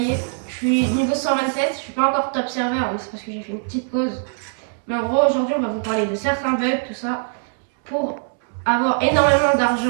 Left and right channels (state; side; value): silent; left; digital silence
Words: je suis niveau 127, je suis pas encore top serveur mais c'est parce que j'ai fait une petite pause. Mais en gros aujourd'hui on va vous parler de certains bugs, tout ça, pour avoir énormément